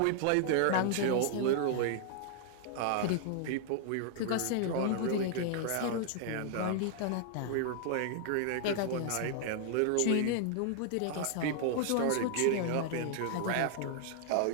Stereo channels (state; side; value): different; both; correlation -0.01